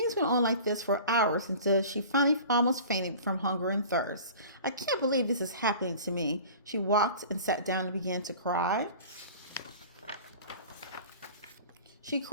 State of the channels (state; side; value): inverted; both; correlation -0.41